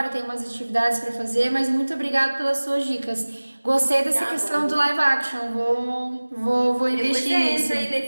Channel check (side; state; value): both; inverted; correlation -1.00